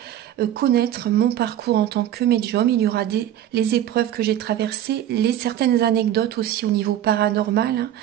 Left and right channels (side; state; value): left; quieter; 11.5 dB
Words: connaître mon parcours en tant que médium. Il y aura les épreuves que j'ai traversées, certaines anecdotes aussi au niveau paranormal,